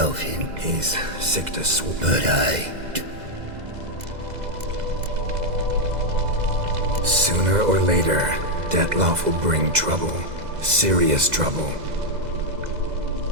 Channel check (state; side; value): late; left; 2.0 ms